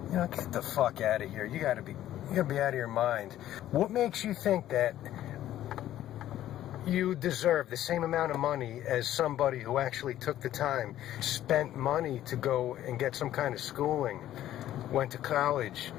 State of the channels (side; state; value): right; quieter; 12.8 dB